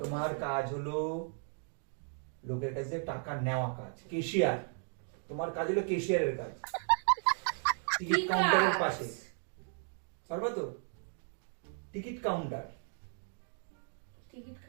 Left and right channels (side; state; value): left; silent; 54 dB below the other